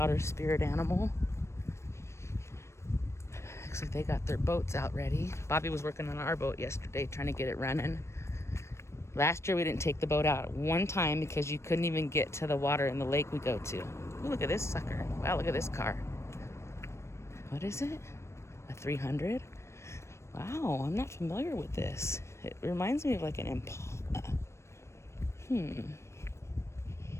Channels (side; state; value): right; late; 0.13 ms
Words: spirit animal. Looks like they got their boats out ready. Bobby was working on our boat yesterday, trying to get it running. Last year we didn't take the boat out one time because you couldn't even get to the water in the lake we go to. Ooh, look at this sucker. Wow, look at this car. What is it? A 300? Wow, I'm not familiar with this. It reminds me of like an Impala.